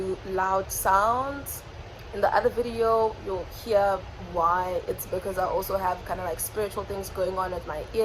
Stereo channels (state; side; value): identical; both; correlation 1.00